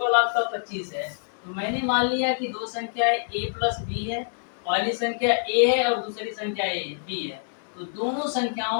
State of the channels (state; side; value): silent; right; digital silence